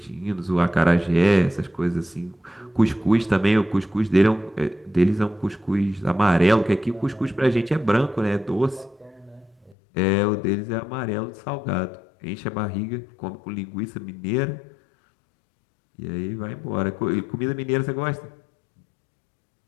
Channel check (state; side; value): drops out; right; at 9.8 s